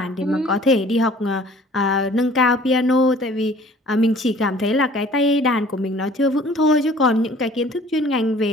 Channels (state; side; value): normal; both; correlation 0.52